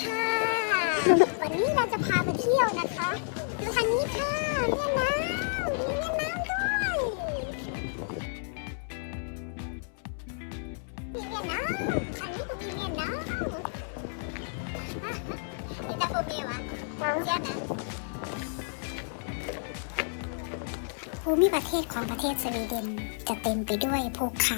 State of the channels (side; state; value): right; silent; 58 dB below the other